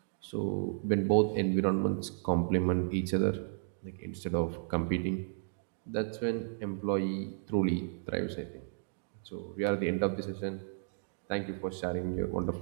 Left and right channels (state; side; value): silent; left; digital silence